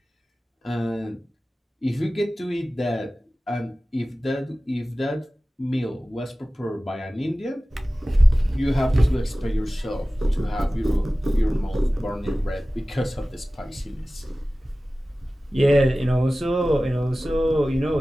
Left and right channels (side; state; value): both; normal; correlation 0.97